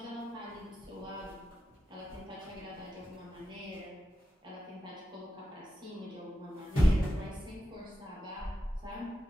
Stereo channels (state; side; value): normal; both; correlation 0.89